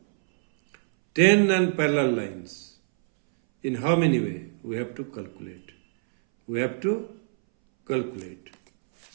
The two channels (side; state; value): left; silent; 61 dB below the other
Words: 10 non-parallel lines. In how many ways? We have to calculate.